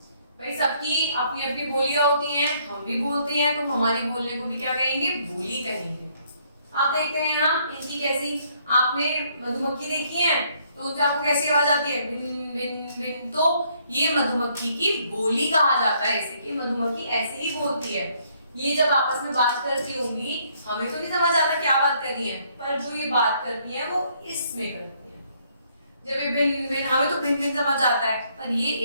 भाई सबकी अपनी अपनी बोलियां होती हैं, हम भी बोलते हैं, तो हमारी बोलने को भी क्या कहेंगे? बोली कहेंगे। आप देखते हैं यहाँ इनकी कैसी, आपने मधुमक्खी देखी है तो उनसे आपको कैसी आवाज आती है? बिन बिन बिन। तो ये मधुमक्खी की बोली कहा जाता है, ऐसे कि मधुमक्खी ऐसे ही बोलती है। ये जब आपस में बात करती होंगी, हमें तो नहीं समझ आता क्या बात कर रही है, पर जो ये बात करती है वो इसमें करती है। जब ये भिन भिन, हमें तो भिन भिन समझ आता है, पर ये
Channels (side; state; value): both; inverted; correlation -0.68